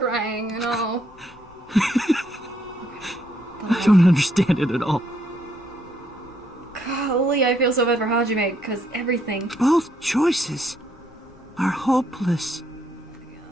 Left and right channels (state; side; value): normal; both; correlation 0.72